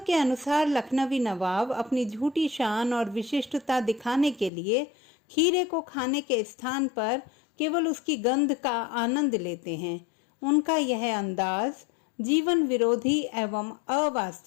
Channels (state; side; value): drops out; right; at 4.5 s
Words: के अनुसार लखनवी नवाब अपनी झूठी शान और विशिष्टता दिखाने के लिए खीरे को खाने के स्थान पर केवल उसकी गंध का आनंद लेते हैं। उनका यह अंदाज जीवन विरोधी एवं